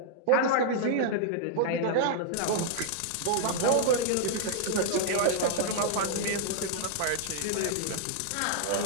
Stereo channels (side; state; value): both; different; correlation -0.01